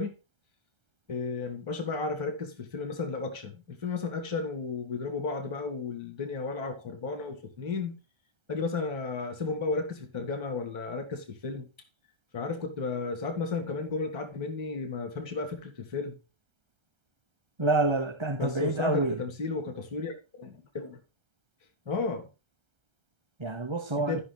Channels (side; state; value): left; late; 1.3 ms